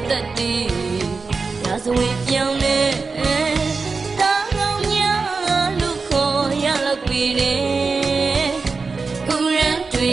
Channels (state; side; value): quieter; left; 4.4 dB